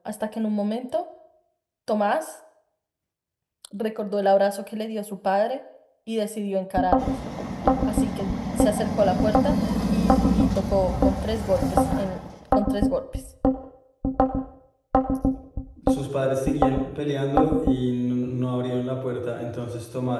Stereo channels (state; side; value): identical; both; correlation 1.00